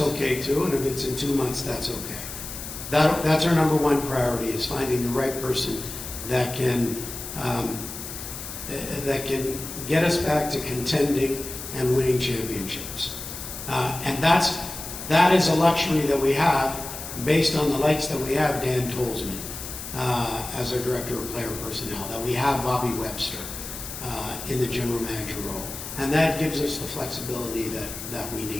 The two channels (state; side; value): noise; left; hiss, 9 dB below the sound